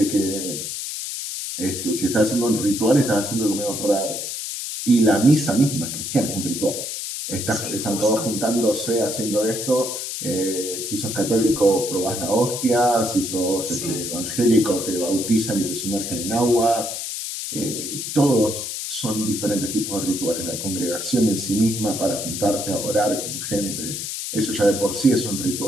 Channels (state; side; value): noise; left; hiss, 5 dB below the sound